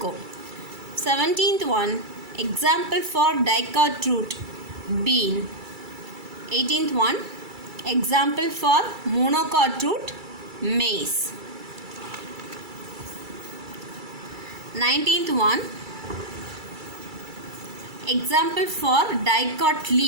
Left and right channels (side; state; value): left; late; 2.3 ms